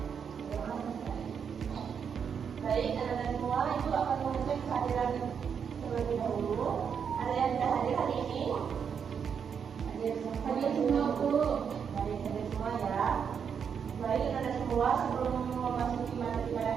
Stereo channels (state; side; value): quieter; left; 7.1 dB